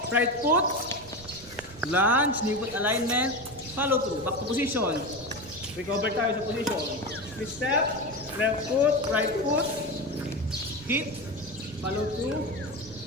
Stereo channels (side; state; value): right; noise; rumble, 19 dB below the sound